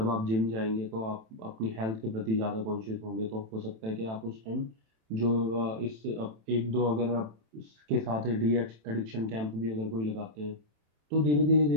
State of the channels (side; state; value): left; late; 27 ms